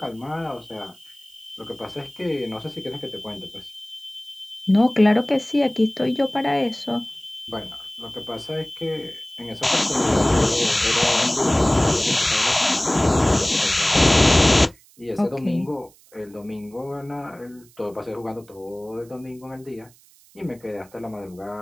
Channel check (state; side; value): noise; right; hiss, 28 dB below the sound